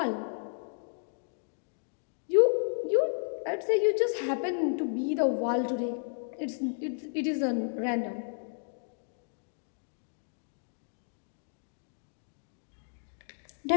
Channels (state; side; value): silent; right; digital silence